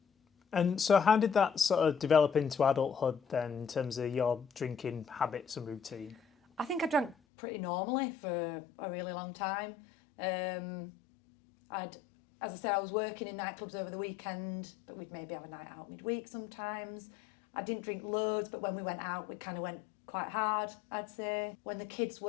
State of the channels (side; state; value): right; drops out; at 7.2 s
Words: And so how did that sort of develop into adulthood then in terms of your drinking habits and routine? I think I drank pretty normally for a really long time. As I said, I was working in nightclubs over the weekend, but we'd maybe have a night out midweek sometimes. I didn't drink loads, but when we went out, we kind of went quite hard, I'd say. When the kids